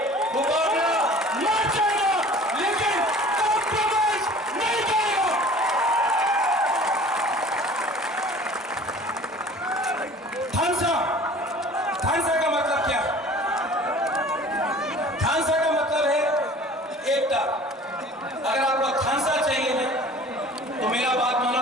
कुबागरा मर जाएगा, लेकिन कॉम्प्रोमाइज नहीं करेगा। थानसा का मतलब क्या? थानसा का मतलब है एकता। अगर आपको थानसा चाहिए ना, तो मेरा बात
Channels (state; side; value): normal; both; correlation 0.46